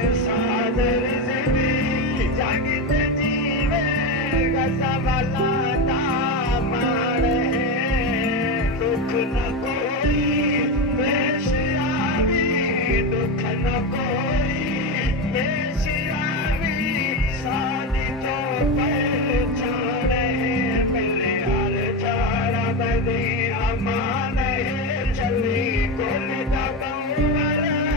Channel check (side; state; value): both; normal; correlation 0.16